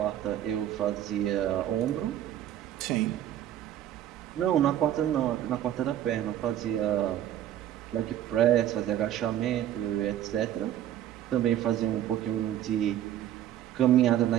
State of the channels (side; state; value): left; quieter; 11.6 dB